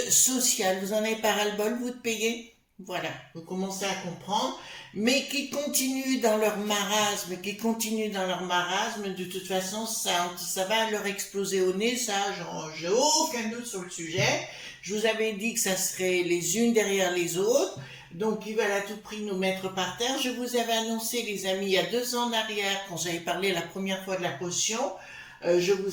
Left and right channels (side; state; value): both; identical; correlation 1.00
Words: sociales. Vous en avez pas ras-le-bol, vous, de payer? Voilà, vous commencez à comprendre, mais qui continuent dans leur marasme, de toute façon, ça va leur exploser au nez, ça, j'ai aucun doute sur le sujet. Je vous avais dit que ça serait les unes derrière les autres, donc ils veulent à tout prix nous mettre par terre. Je vous avais annoncé, les amis, il y a 2 ans en arrière, quand j'avais parlé la première fois de la potion, je